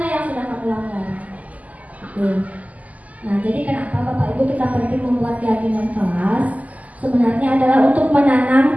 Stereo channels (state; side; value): late; left; 0.075 ms